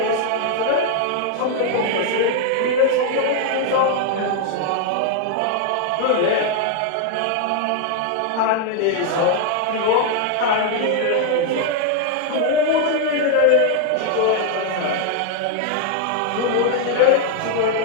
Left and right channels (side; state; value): both; different; correlation 0.00